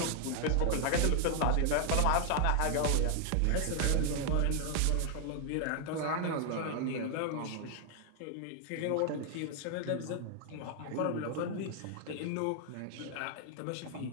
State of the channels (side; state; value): both; different; correlation 0.00